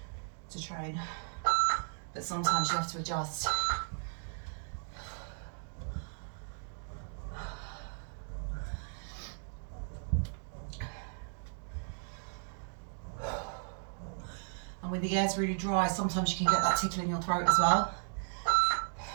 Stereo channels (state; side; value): silent; left; 54 dB below the other